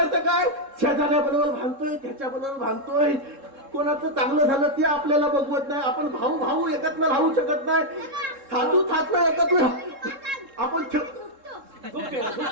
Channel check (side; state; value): left; late; 3.7 ms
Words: काय? शेजाऱ्याबरोबर भांडतोय, त्याच्याबरोबर भांडतोय, कोणाचं चांगलं झालं ते आपल्याला बघवत नाही. आपण भाऊ भाऊ एकत्र राहू शकत नाही. थातू थातला एकत्र आपण